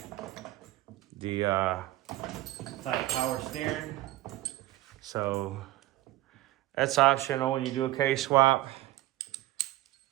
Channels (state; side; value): quieter; left; 16.8 dB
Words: the power steering. So that's optional when you do a case swap.